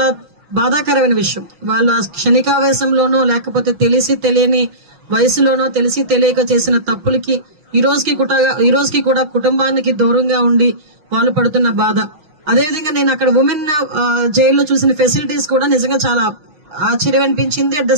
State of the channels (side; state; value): left; late; 5.9 ms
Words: బాధాకరమైన విషయం. వాళ్ళు ఆ క్షణికావేశంలోనో లేకపోతే తెలిసి తెలియని వయసులోనో తెలిసి తెలియక చేసిన తప్పులకి ఈ రోజుకి కూడా కుటుంబానికి దూరంగా ఉండి వాళ్ళు పడుతున్న బాధ. అదేవిధంగా నేను అక్కడ ఉమెన్ జైల్లో చూసిన ఫెసిలిటీస్ కూడా నిజంగా చాలా ఆశ్చర్యం అనిపించింది. At the